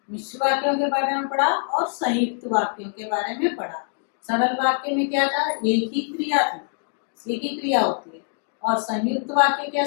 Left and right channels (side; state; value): right; silent; digital silence